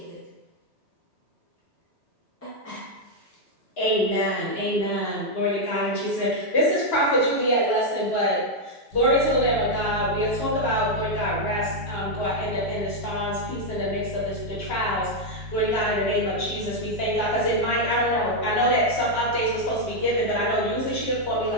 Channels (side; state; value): both; normal; correlation 0.00